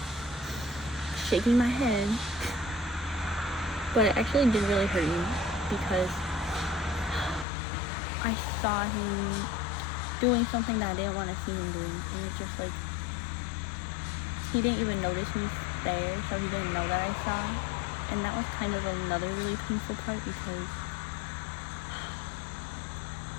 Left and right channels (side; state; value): right; drops out; at 7.5 s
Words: shaking my head. But it actually did really hurt me, because I saw him doing something that I didn't want to see him doing, and it just, like, he didn't even notice me there, so he didn't know that I saw. And that was kind of another really painful part, because